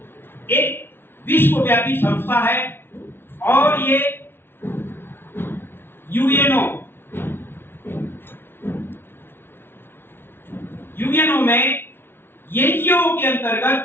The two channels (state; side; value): late; right; 0.11 ms